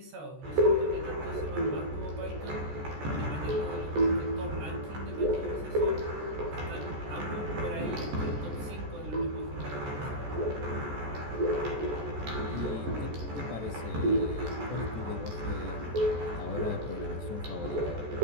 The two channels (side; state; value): left; late; 14 ms